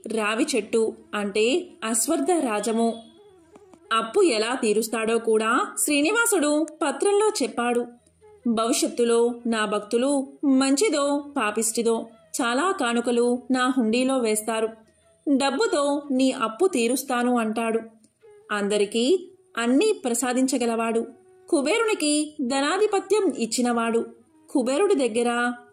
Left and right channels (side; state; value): both; identical; correlation 1.00